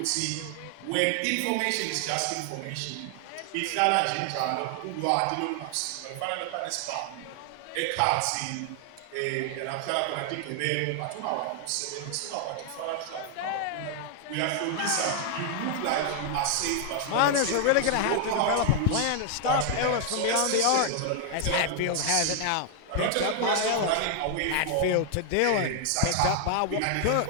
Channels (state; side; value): different; both; correlation 0.00